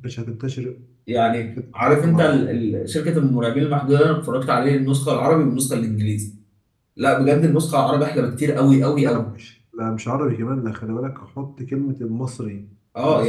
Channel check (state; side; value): identical; both; correlation 1.00